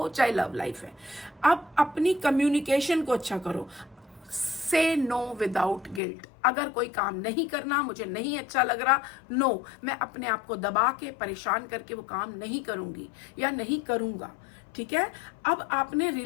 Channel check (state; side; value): drops out; right; at 6.0 s